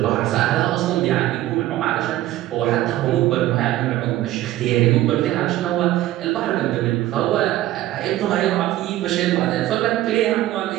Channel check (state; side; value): quieter; left; 14.8 dB